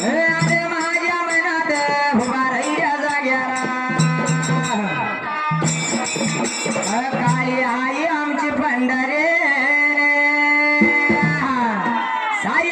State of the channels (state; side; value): identical; both; correlation 1.00